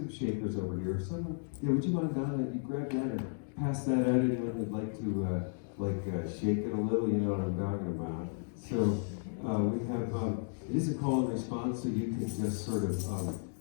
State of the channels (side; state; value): right; silent; digital silence